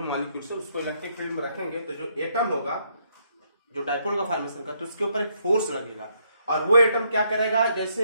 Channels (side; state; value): both; inverted; correlation -0.73